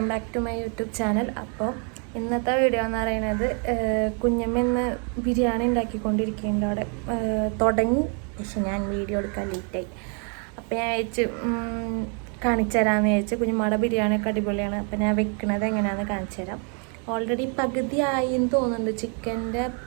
back to my YouTube channel. അപ്പോൾ ഇന്നത്തെ video എന്ന് പറയുന്നത് കുഞ്ഞമ്മ ഇന്ന് ബിരിയാണി ഉണ്ടാക്കിക്കൊണ്ടിരിക്കുന്നുണ്ട്. അവിടെ തുടങ്ങി, പക്ഷെ ഞാൻ വീഡിയോ എടുക്കാൻ ലേറ്റായി. അപ്പോൾ ഞാൻ കാണിച്ചു തരാമെന്ന് വിചാരിച്ചു. കുഞ്ഞമ്മയുടെ ബിരിയാണിയൊക്കെ അടിപൊളിയാണ്. അപ്പോൾ ഞാൻ വെക്കുന്നത് എങ്ങനെയാണെന്ന് കാണിച്ചു തരാം. ഓൾറെഡി പകുതി ആയി എന്ന് തോന്നുന്നുണ്ട്. ചിക്കൻ്റെ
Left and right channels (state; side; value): quieter; left; 39.3 dB